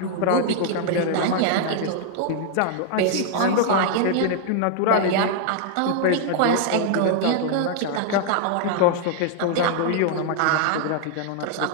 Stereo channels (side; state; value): both; different; correlation 0.00